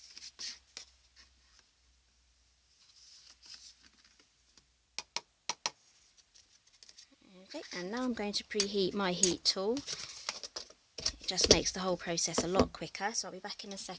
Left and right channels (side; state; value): both; identical; correlation 1.00